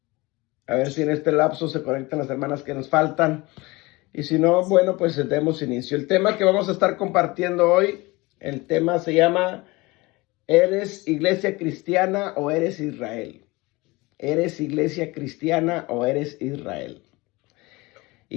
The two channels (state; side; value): quieter; right; 22.9 dB